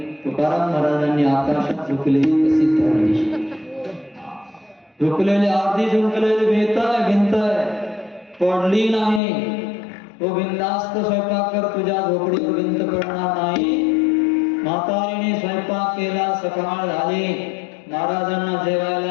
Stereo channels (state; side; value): drops out; right; at 9.2 s